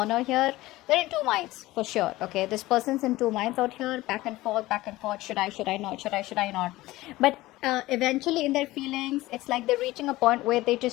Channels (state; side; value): quieter; right; 18.1 dB